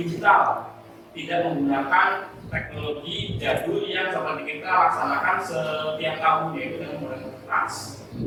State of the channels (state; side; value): identical; both; correlation 1.00